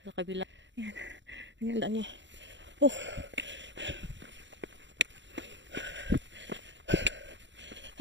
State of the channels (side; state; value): left; late; 0.53 ms